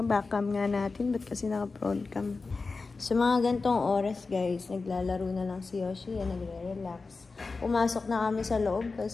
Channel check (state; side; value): quieter; right; 4.1 dB